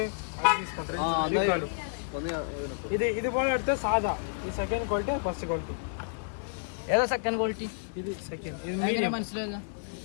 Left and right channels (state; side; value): silent; right; 58 dB below the other